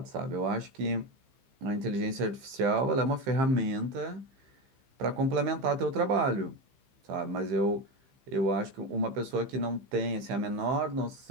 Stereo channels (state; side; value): late; left; 15 ms